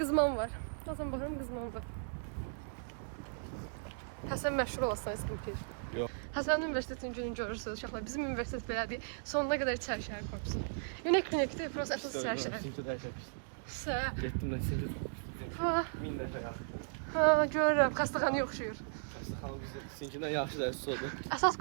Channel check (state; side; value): silent; left; digital silence